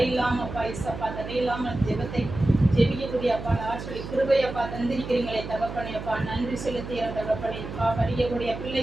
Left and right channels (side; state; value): right; noise; hum, 9 dB below the sound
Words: இல்லாமப்பா இசப்பா, தடை இல்லாமல் ஜெபத்தை ஜெபிக்கக்கூடிய அப்பா ஆற்றலை கிருபையப்பா தந்திருக்கிறீங்களே தகப்பனே அப்பா, நன்றி செலுத்துகிறோம் தகப்பனே. அப்பா படிக்கக்கூடிய